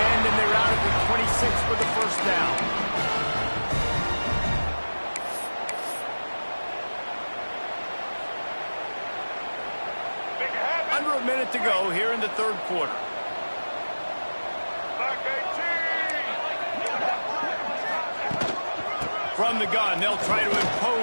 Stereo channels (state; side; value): inverted; both; correlation -1.00